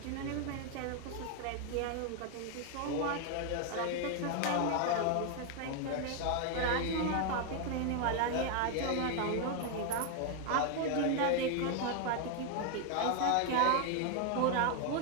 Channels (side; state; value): both; different; correlation 0.00